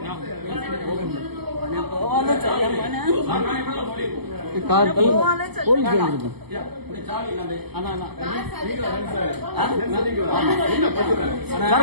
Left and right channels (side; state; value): left; late; 0.97 ms